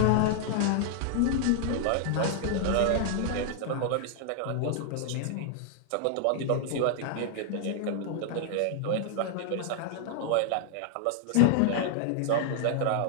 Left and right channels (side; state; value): both; different; correlation 0.00